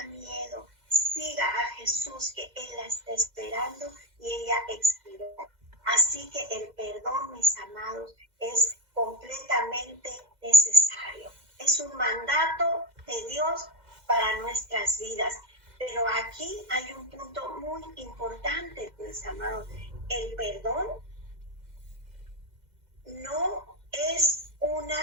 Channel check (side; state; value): left; late; 2.0 ms